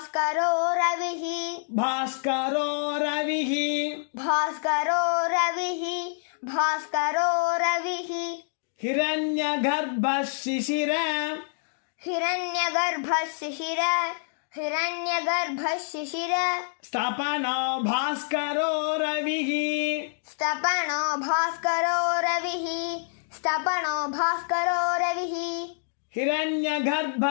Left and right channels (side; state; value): right; silent; digital silence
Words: रविः भास्करो रविः भास्करो रविः भास्करो रविः हिरण्यगर्भः शिशिर हिरण्यगर्भः शिशिर हिरण्यगर्भः शिशिर स्तपनो भास्करो रविः स्तपनो भास्करो रविः स्तपनो भास्करो रविः